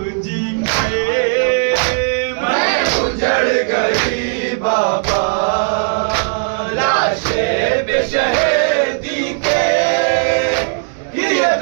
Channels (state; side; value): silent; left; 69 dB below the other